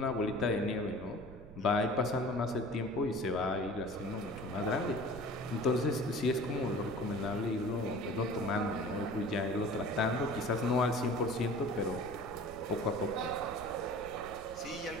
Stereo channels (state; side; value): noise; right; rumble, 16 dB below the sound